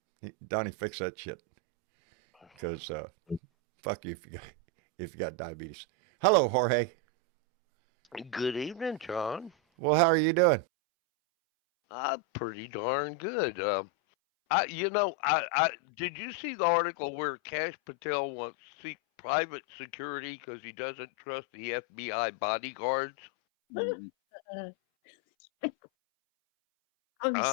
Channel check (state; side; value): drops out; right; at 10.7 s